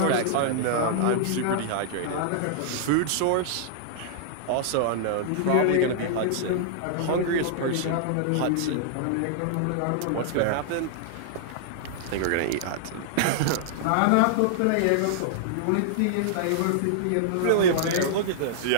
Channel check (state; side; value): different; both; correlation -0.01